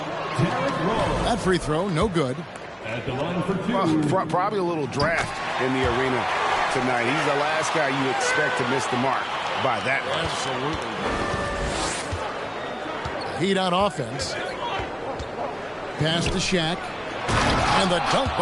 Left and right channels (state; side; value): identical; both; correlation 1.00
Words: That free throw, no good. Well, probably a little draft in the arena tonight. He's the last guy you expect to miss the mark by that much. Absolutely. Heat on offense. Pass to Shaq. And the dunk